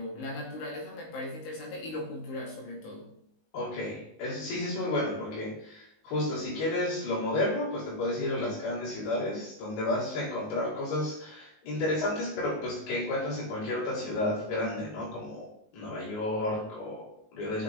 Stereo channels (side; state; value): right; late; 19 ms